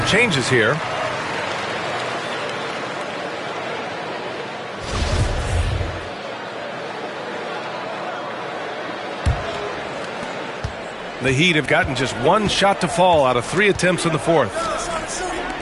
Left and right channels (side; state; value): both; identical; correlation 1.00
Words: changes here. The Heat have gotten just one shot to fall out of 3 attempts in the fourth.